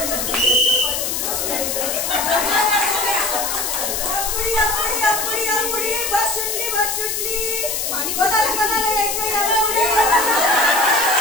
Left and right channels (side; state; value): left; noise; hiss, 1 dB below the sound